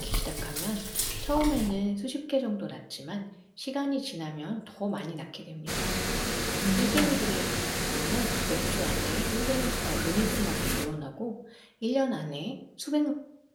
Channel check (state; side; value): identical; both; correlation 1.00